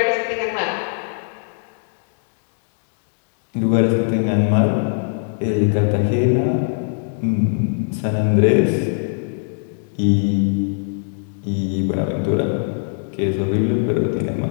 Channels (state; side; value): silent; right; digital silence